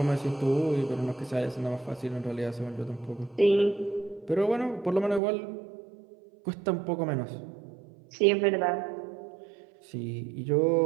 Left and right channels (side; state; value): left; drops out; at 5.2 s